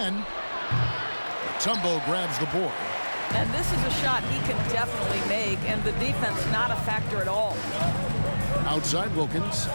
Tumbo grabs the board. And this is a shot he can definitely make, and the defense not a factor at all. Outside Wilkins,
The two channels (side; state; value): both; inverted; correlation -1.00